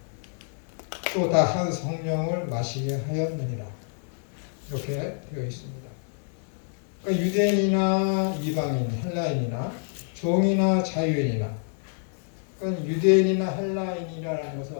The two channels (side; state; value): right; silent; 60 dB below the other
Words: 또 다 한 성령을 마시게 하였느니라. 이렇게 되어 있습니다. 그러니까 유대인이나 이방인, 헬라인이나 종이나 자유인이나 그러니까 유대인이나 헬라인이라는 것은